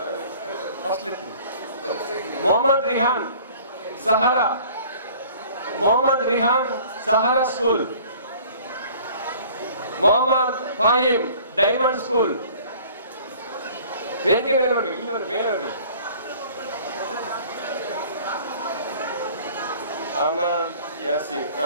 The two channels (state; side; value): inverted; both; correlation -0.50